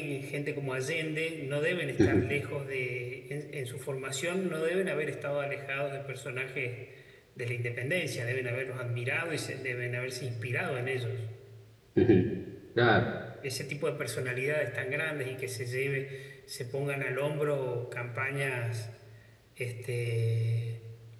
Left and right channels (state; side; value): identical; both; correlation 1.00